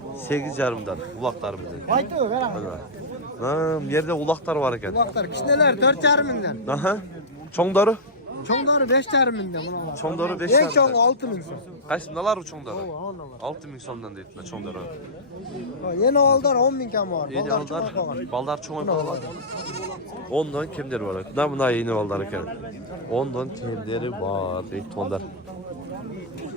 8,5'dan ulaqtari bilan. Aytı ver ama. Ha, bu yerde ulaqtar var ekan. Kulaklar kişneler 4,5 mingden. Aha. Çoңdары? Çoңdары 5,5 mingden buna var. Çoңdары 5 En çoğu 6 ming so'm. Qaysi nalar bu çoңdары? 6 ming so'mdan deydilar çoңdары. Yeni oğullar 10 ming kam var. Yeni Balдар aldar, çoğal koygan. baldar çoğun oldu. 10'dan kimleri var? Buna yeni baldar ekan. 10'dan kimleri var deydi tonlar.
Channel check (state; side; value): normal; both; correlation -0.11